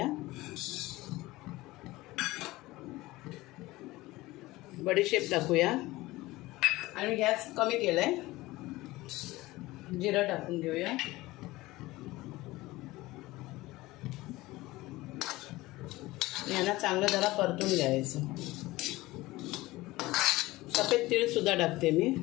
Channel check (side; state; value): right; quieter; 19.2 dB